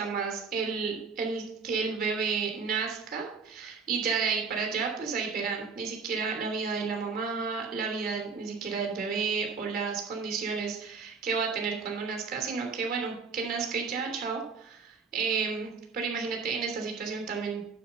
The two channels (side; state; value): left; quieter; 5.0 dB